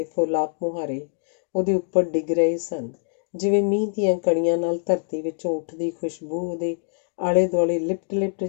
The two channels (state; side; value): silent; right; digital silence